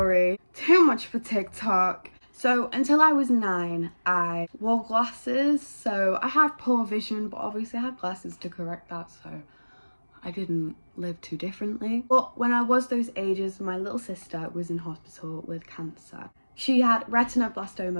too much for TikTok. So until I was 9, I wore glasses, so I had poor vision, but obviously I had glasses to correct that, so I didn't live too differently. But when I was those ages, my little sister was in hospital with cancer. She had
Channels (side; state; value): both; inverted; correlation -1.00